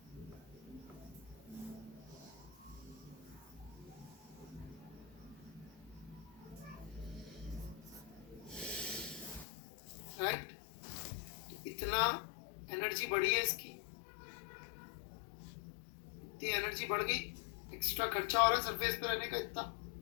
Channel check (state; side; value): drops out; right; at 9.5 s